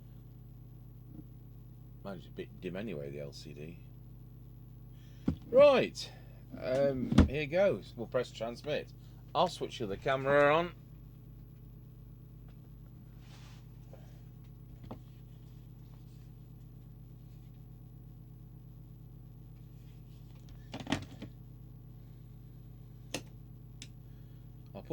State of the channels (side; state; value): both; identical; correlation 1.00